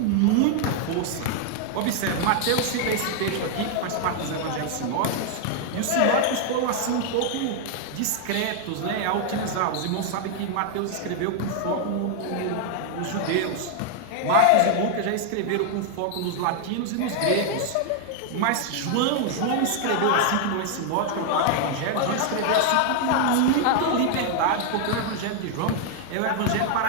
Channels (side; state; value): both; different; correlation 0.00